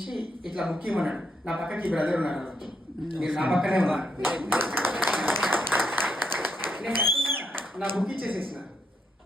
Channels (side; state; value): both; normal; correlation 0.79